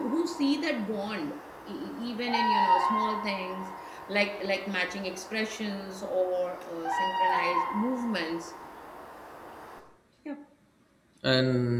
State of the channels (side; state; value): both; identical; correlation 1.00